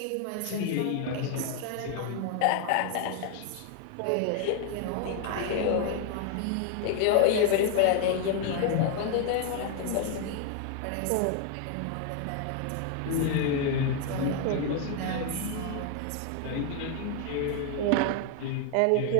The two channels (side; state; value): both; different; correlation 0.00